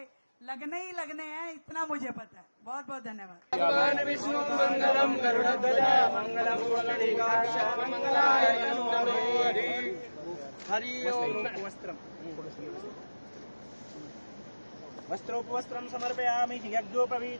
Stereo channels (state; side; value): inverted; both; correlation -1.00